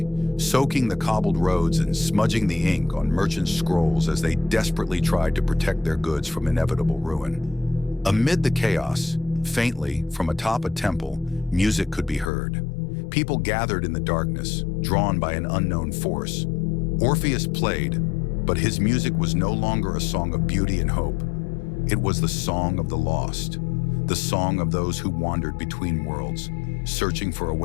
soaking the cobbled roads and smudging the ink on merchants' scrolls as they desperately tried to protect their goods from inevitable ruin. Amid the chaos, faintly, from atop a temple, music could be heard. People gathered in the darkness, drawn by an unknown force. Orpheus played, but his music was no longer a song of beauty and hope. It was the song of the lost, the song of those who wandered between worlds, searching for a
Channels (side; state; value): right; drops out; at 12.3 s